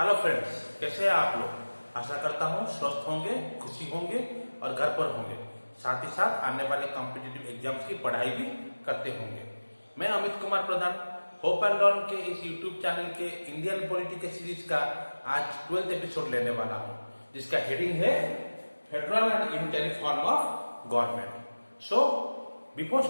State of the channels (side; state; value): both; inverted; correlation -1.00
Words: friends, कैसे हैं आप लोग। आशा करता हूँ स्वस्थ होंगे, खुशी होंगे और घर पर होंगे। साथ ही साथ आने वाले कॉम्पिटिटिव एग्जाम्स की पढ़ाई भी करते होंगे। मैं अमित कुमार प्रधान होप एंड लर्न के इस यूट्यूब चैनल के इंडियन पॉलिटी के सीरीज का आज 12th एपिसोड लेने वाला हूँ, जिसका हेडिंग है federal and unitary form of government. So before